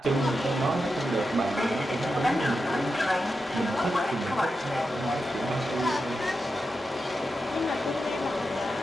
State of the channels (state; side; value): normal; both; correlation 0.89